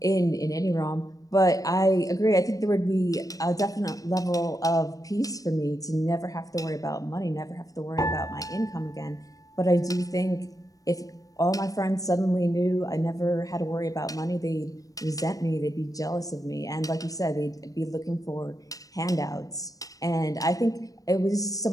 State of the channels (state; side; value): late; right; 0.17 ms